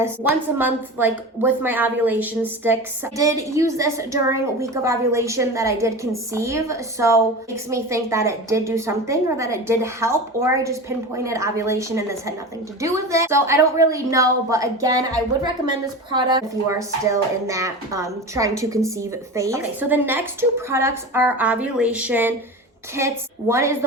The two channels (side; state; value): both; normal; correlation 0.29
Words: once a month, like with my ovulation sticks. I did use this during a week of ovulation that I did conceive, so it makes me think that it did do something, or that it did help, or I just pinpointed ovulation and this had nothing to do with it. So I don't really know, but again, I would recommend this product if you are still in that trying to conceive phase. Okay, so the next two products are ovulation kits. One is